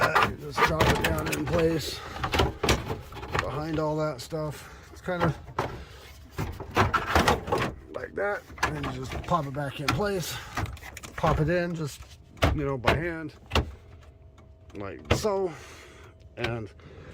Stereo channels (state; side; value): identical; both; correlation 1.00